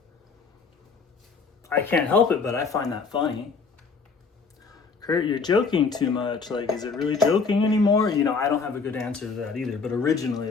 I can't help it, but I find that funny. Kurt, you're joking too much. Like, is it really joking anymore? I don't have a good answer to that either, but originally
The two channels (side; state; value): right; quieter; 4.9 dB